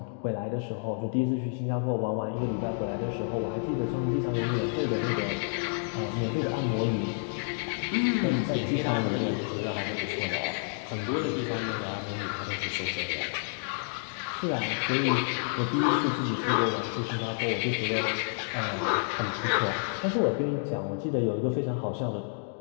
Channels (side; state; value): right; silent; 58 dB below the other